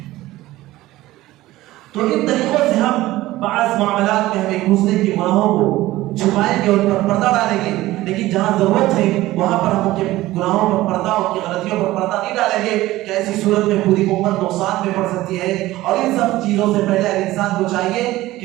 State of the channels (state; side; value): quieter; left; 16.9 dB